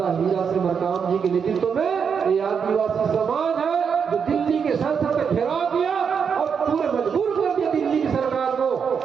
हीरा सिंह मरकाम जी के नेतृत्व में ये आदिवासी समाज है जो दिल्ली के संसद में घेराव किया और पूरे मजबूर कर दिया दिल्ली की सरकार को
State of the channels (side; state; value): left; quieter; 6.6 dB